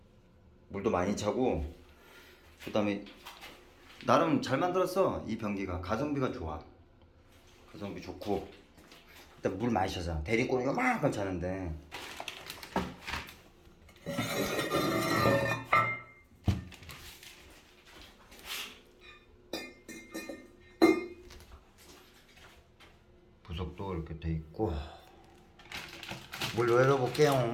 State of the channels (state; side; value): identical; both; correlation 1.00